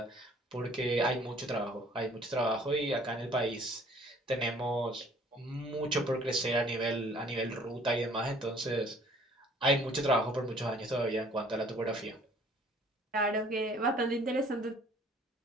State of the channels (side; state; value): both; normal; correlation 0.56